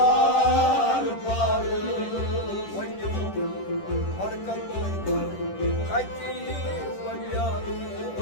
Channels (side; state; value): right; late; 10 ms